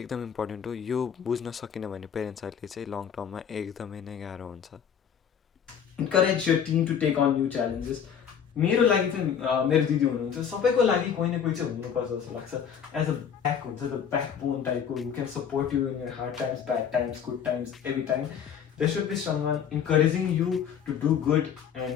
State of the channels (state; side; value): quieter; right; 8.0 dB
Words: एकदम इम्पोर्टेन्ट हो. यो बुझ्न सकिन भने पेरेन्ट्सहरूले चाहिँ लङ टर्ममा एकदमै नै गाह्रो हुन्छ. Encourage your team to take on new challenges. मेरो लागि चाहिँ मेरो दिदी हुनुहुन्छ, सबैको लागि कोही न कोही चाहिँ हुनुपर्छ जस्तो लाग्छ. एज अ ब्याक हुन्छ, द ब्याक बोन टाइपको who can support you in your hard times, bad times, good times, every time. There should be someone encouraging you to do good